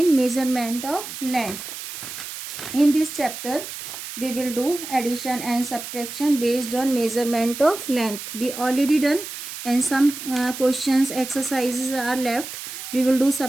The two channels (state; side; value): noise; right; hiss, 9 dB below the sound